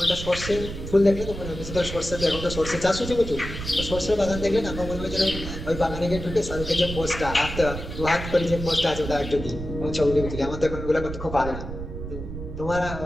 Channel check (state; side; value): noise; right; rumble, 8 dB below the sound